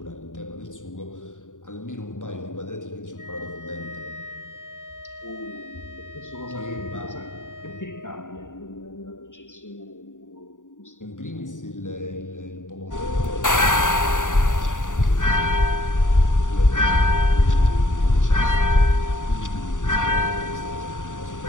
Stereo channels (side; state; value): right; late; 0.87 ms